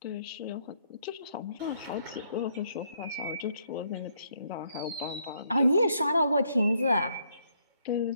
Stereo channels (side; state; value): both; inverted; correlation -0.72